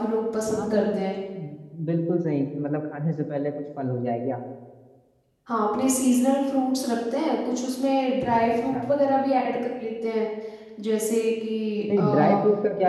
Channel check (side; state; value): both; identical; correlation 1.00